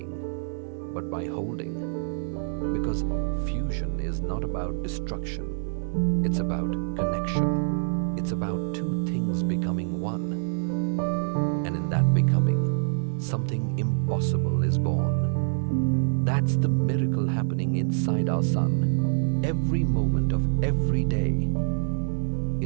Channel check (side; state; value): left; silent; digital silence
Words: but by holding. Because fusion is not about destruction, it's about connection. It's about two things becoming one. And in that becoming, something impossible is born. That's the miracle happening inside our sun, every moment of every day.